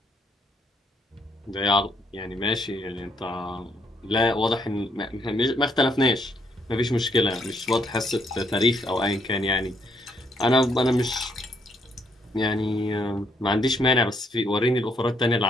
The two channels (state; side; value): normal; both; correlation 0.72